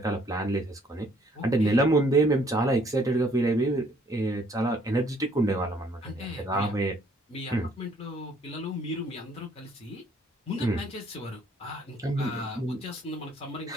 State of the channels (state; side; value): normal; both; correlation 0.63